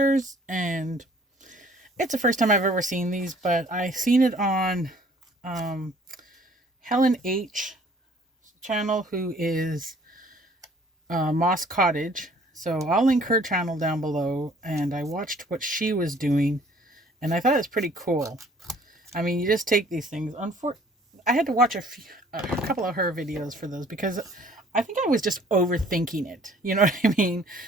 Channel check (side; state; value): both; normal; correlation 0.56